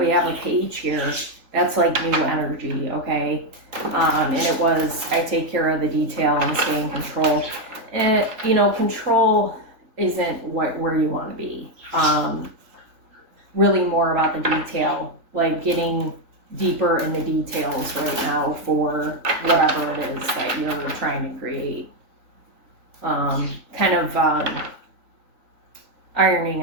have a page here, that's like new energy, okay? And it was, I take care of the detail and stay in control. And, you know, control isn't where you want to be. Really more about the detail, like getting deeper in the details right now for whatever it is that you're trying to create. Kind of ironing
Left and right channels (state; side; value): late; left; 3.5 ms